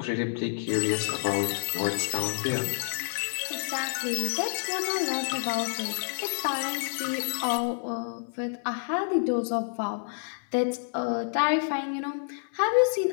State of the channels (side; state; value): right; silent; digital silence